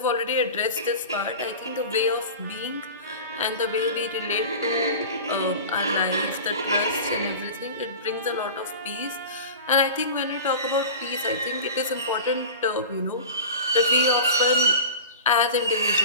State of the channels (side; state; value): both; inverted; correlation -0.34